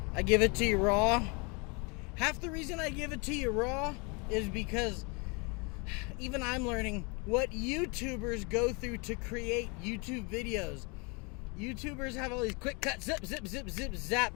I give it to you raw. Half the reason I give it to you raw is because even I'm learning what YouTubers go through to create YouTube videos. YouTubers have all these quick cuts, zip, zip, zip, zip,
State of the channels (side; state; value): right; quieter; 31.2 dB